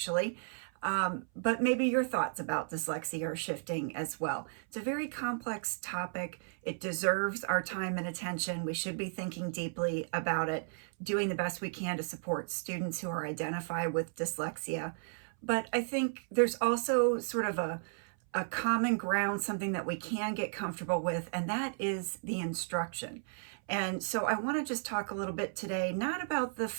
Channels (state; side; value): silent; left; 55 dB below the other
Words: But maybe your thoughts about dyslexia are shifting as well. It's a very complex topic. It deserves our time and attention. We should be thinking deeply about it, doing the best we can to support students who are identified with dyslexia. But I think there's also sort of a common ground, something that we can get comfortable with, and that is the instruction. And so I want to just talk a little bit today, not about the